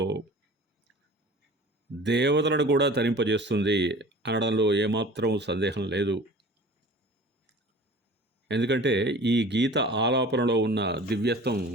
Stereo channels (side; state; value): both; normal; correlation 0.42